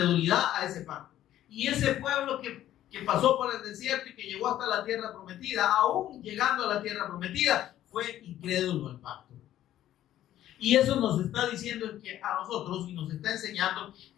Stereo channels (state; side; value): quieter; right; 12.6 dB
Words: a ese pacto. Y ese pueblo que pasó por el desierto y que llegó hasta la tierra prometida, aún llegando a la tierra prometida, fue incrédulo al pacto. Y eso nos está diciendo que a nosotros, y nos está enseñando,